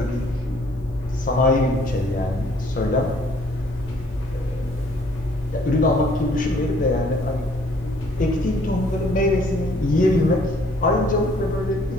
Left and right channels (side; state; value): both; normal; correlation 0.61